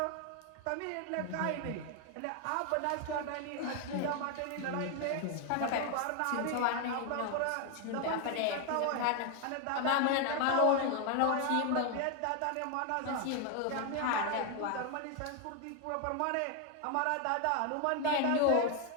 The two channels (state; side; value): different; both; correlation 0.01